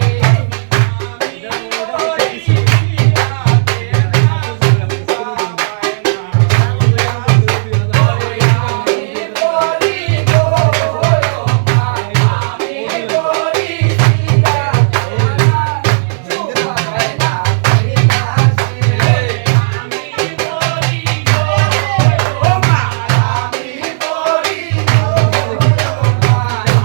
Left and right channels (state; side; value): silent; left; digital silence